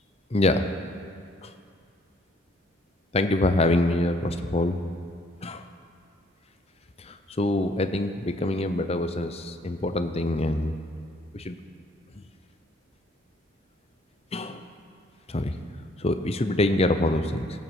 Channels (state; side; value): normal; both; correlation 0.64